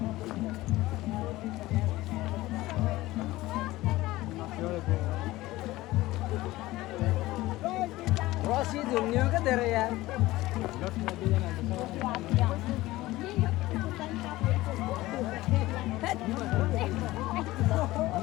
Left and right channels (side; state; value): right; quieter; 17.9 dB